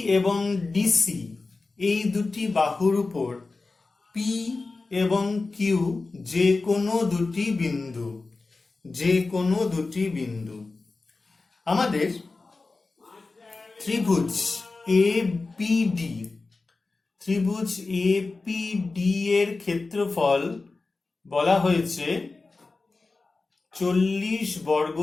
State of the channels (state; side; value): quieter; right; 3.7 dB